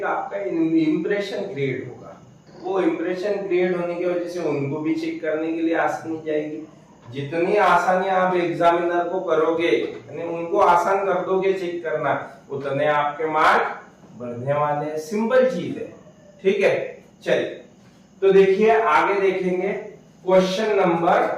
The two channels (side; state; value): both; identical; correlation 1.00